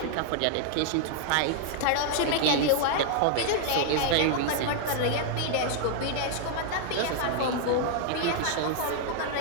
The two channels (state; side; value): different; both; correlation 0.00